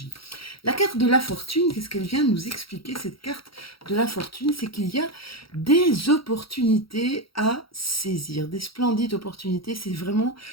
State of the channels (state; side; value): late; right; 0.75 ms